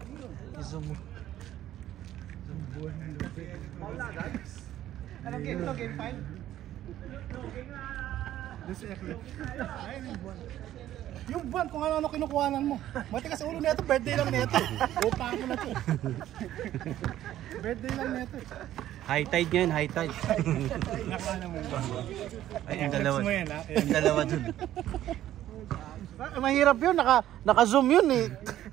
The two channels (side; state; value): left; quieter; 12.8 dB